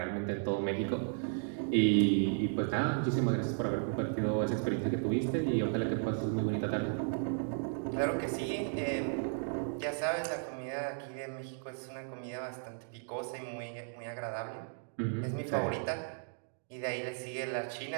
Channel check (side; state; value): left; silent; digital silence